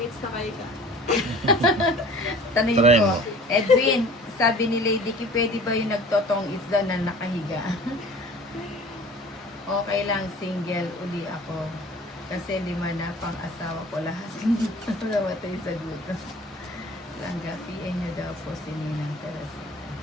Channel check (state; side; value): normal; both; correlation 0.45